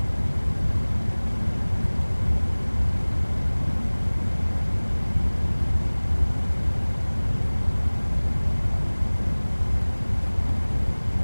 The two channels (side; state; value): both; inverted; correlation -1.00